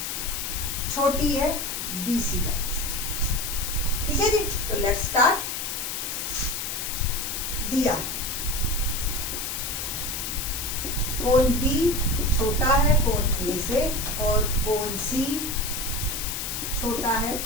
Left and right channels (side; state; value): left; noise; hiss, 3 dB below the sound